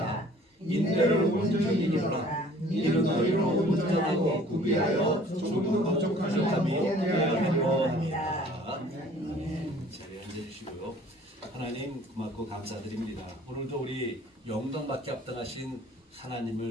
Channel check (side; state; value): both; normal; correlation 0.52